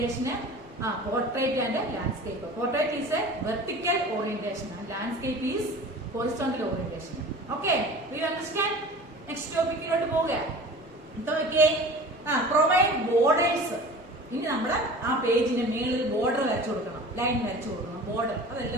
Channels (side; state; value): both; normal; correlation 0.40